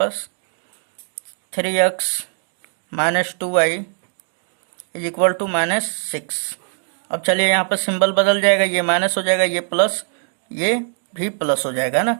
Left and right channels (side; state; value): left; silent; digital silence